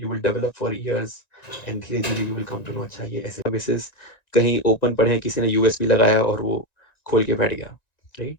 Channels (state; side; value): late; right; 1.9 ms